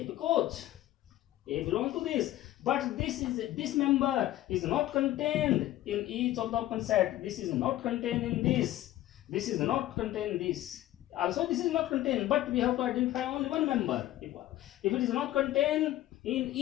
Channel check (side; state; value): right; quieter; 14.6 dB